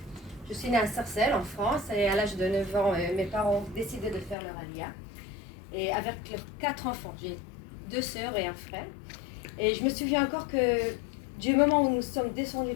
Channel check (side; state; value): right; drops out; at 4.4 s